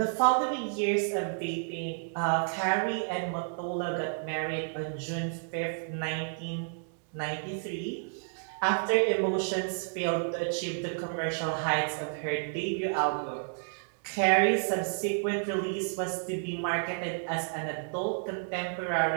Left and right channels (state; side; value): silent; left; digital silence